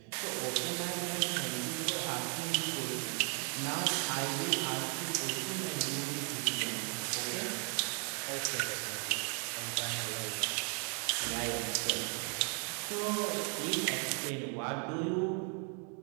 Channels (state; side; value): quieter; left; 39.7 dB